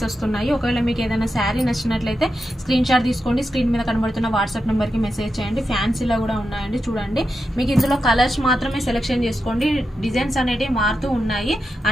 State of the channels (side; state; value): both; normal; correlation 0.88